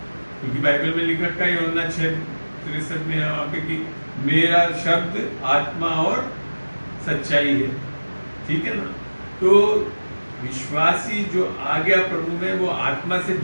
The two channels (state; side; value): inverted; both; correlation -1.00